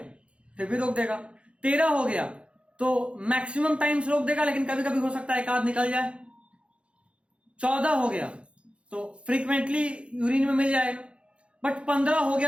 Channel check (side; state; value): left; late; 0.059 ms